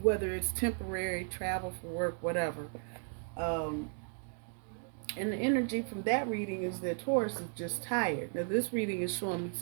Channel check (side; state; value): left; silent; 54 dB below the other